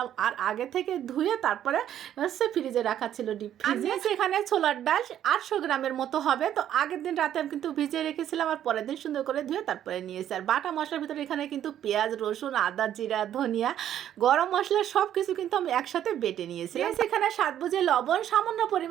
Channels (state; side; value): quieter; left; 10.8 dB